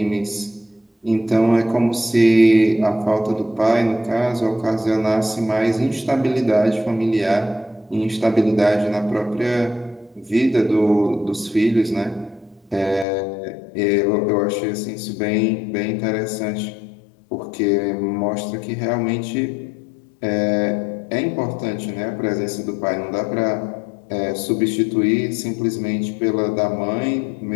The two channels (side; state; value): right; drops out; at 13.1 s